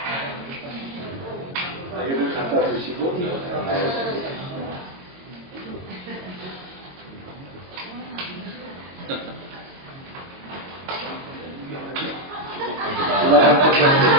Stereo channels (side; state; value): left; late; 22 ms